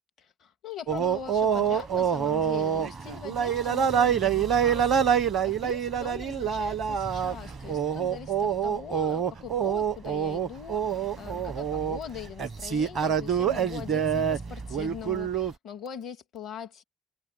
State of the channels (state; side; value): quieter; left; 6.8 dB